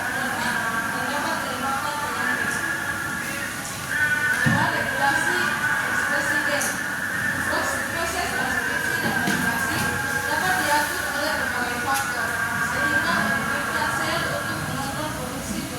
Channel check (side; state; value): right; noise; hum, 27 dB below the sound